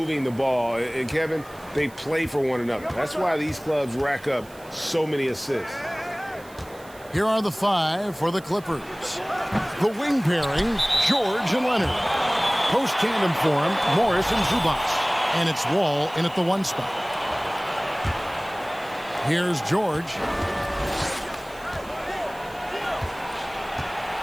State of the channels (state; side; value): noise; right; hiss, 23 dB below the sound